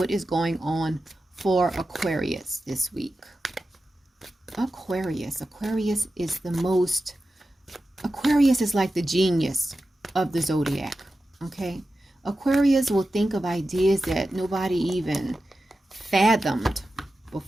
is going on for Aquarius this week. Aquarius is the most, Aquarius is like the genius of the zodiac, okay? Aquarius will think of ideas that nobody even fathomed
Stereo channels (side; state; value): both; normal; correlation 0.92